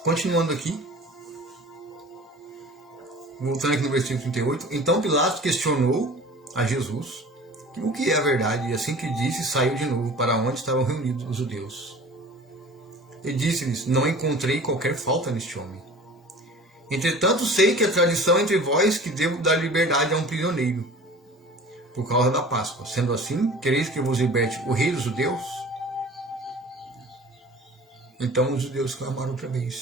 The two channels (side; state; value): both; normal; correlation 0.42